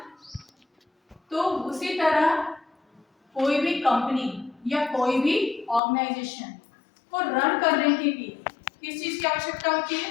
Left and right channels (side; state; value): right; drops out; at 5.8 s